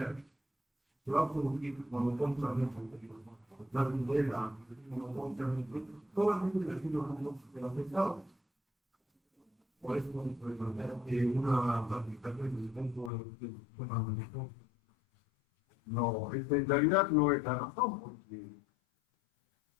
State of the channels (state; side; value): drops out; right; at 13.1 s